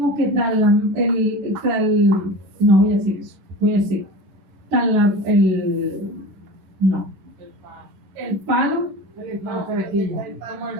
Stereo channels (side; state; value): left; late; 10 ms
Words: que no voy a decir eso, voy a decir el palo,